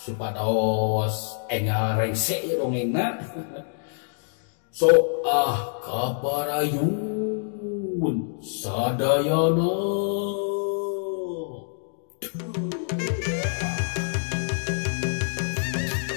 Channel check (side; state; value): right; silent; digital silence